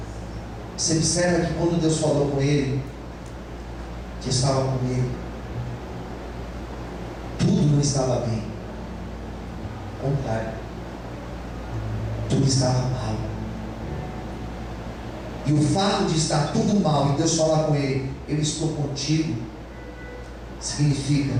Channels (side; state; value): both; identical; correlation 1.00